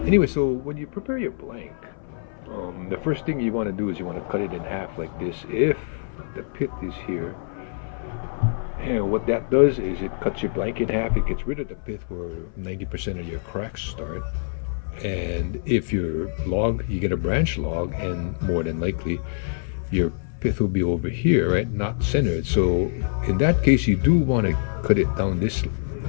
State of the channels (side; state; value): right; silent; 58 dB below the other